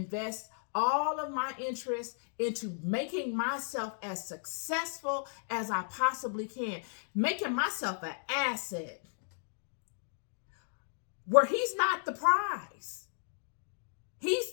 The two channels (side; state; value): right; silent; digital silence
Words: all of my interest into making myself as successful as I possibly can, making myself an asset where he's not the prize.